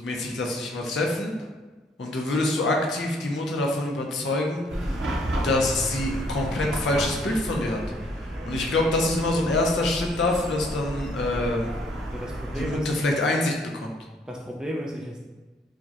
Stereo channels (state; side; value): normal; both; correlation 0.65